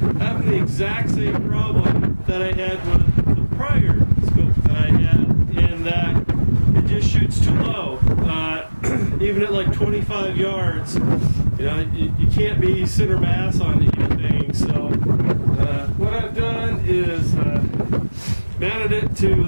Having the exact same problem that I had with the prior scope that I had, in that it just shoots too low. Even at like 25 yards, you know, you can't be center mass on anything. So what I've done is mounted it to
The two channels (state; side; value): inverted; both; correlation -1.00